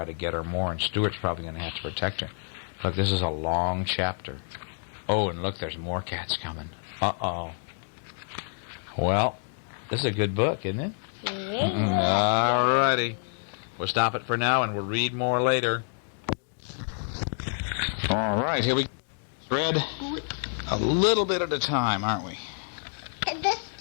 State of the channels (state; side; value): silent; right; digital silence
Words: to get her more, and Stuart's probably going to have to protect her. Look, this is a long chapter. Oh, and look, there's more cats coming. Uh-oh. Well, this is a good book, isn't it? All righty. We'll stop it for now, and we'll read more later. All right, here we read a little bit at a time, aren't we?